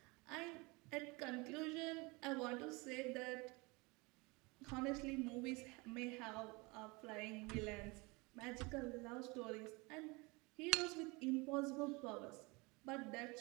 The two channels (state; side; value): quieter; left; 26.3 dB